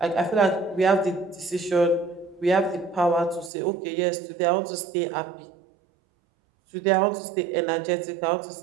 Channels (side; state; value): left; drops out; at 3.5 s